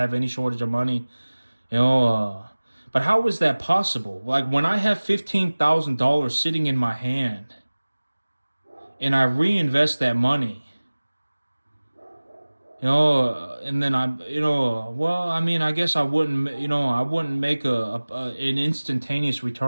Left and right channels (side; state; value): both; inverted; correlation -1.00